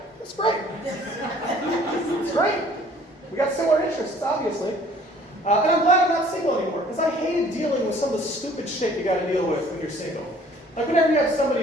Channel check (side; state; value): both; normal; correlation 0.55